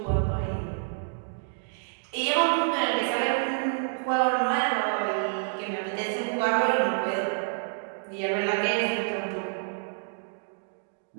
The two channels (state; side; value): silent; left; digital silence